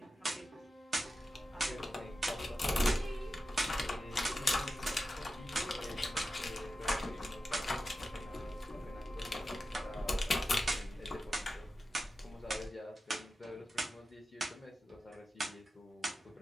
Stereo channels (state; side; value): normal; both; correlation 0.92